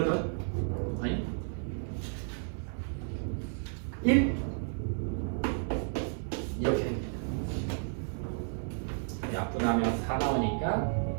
아니? 1? 이렇게 됩니다. 약분하면 4 나오니까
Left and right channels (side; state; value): left; silent; 56 dB below the other